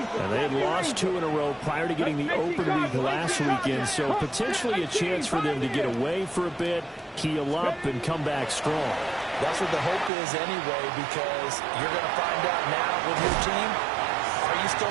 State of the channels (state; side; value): drops out; left; at 10.1 s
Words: And they had lost 2 in a row prior to getting the open week last weekend, so potentially a chance for them to get away for a bit, keel up, and come back strong. That's what the hope is anyway, because you're going to find out now with your team, are you